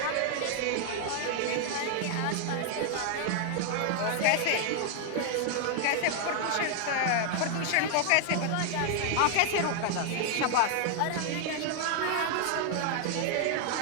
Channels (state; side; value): different; both; correlation 0.00